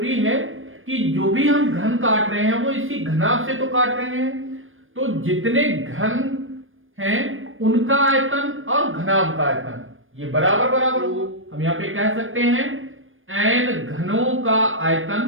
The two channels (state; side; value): late; left; 0.59 ms